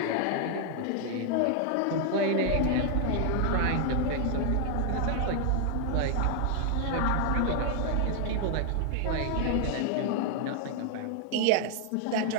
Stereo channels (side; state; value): both; different; correlation 0.00